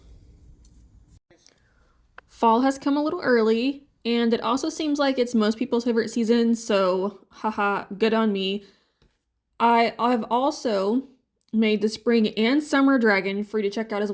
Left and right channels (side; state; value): both; identical; correlation 1.00